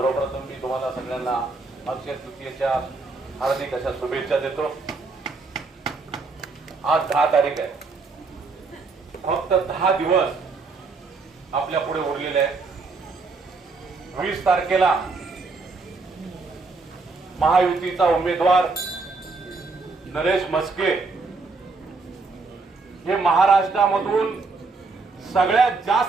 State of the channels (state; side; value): quieter; left; 4.0 dB